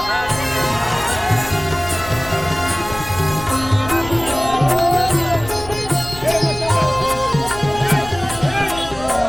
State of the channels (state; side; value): noise; left; rumble, 15 dB below the sound